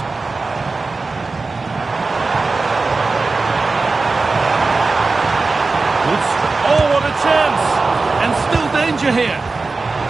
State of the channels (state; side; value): quieter; left; 3.8 dB